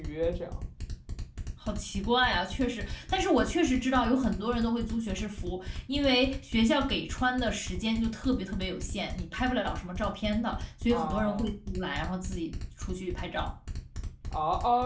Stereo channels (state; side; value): identical; both; correlation 1.00